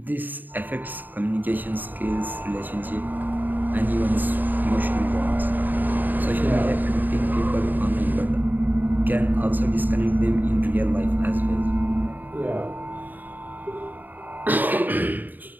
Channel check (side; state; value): left; late; 0.088 ms